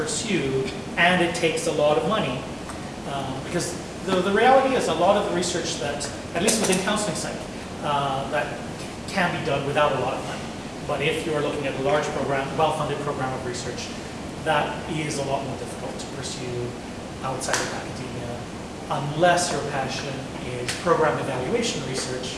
and it takes a lot of money, because the reality is a lot of the research that, at least within counseling psych, that can be done without a lot of money. But if you're looking at a large program, well-funded program of research, that is a lot more difficult to pursue outside of academia, unless your passion is program evaluation research.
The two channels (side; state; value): both; identical; correlation 1.00